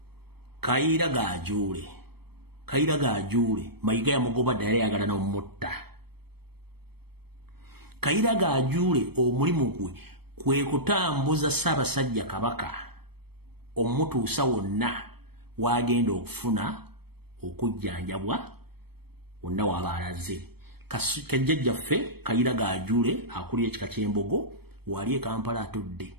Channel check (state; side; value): late; left; 0.97 ms